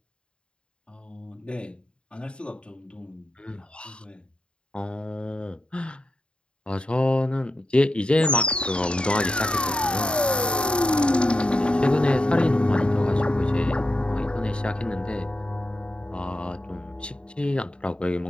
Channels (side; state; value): right; late; 0.054 ms